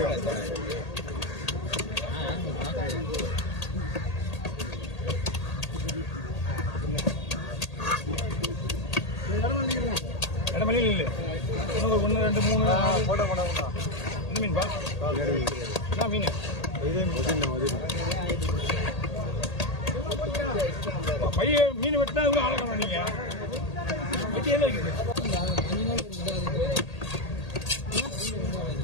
இடமலையில் இல்லை இன்னும் ஒரு 1 2 3 போட்டோ என்ன மீன்பா என்ன மீன் பைய மீன் வெட்டினா இவ்வளோ ஆழக்கணும் நீங்கள் வெட்டி எல்லாம் இருக்குது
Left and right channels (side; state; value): right; late; 1.8 ms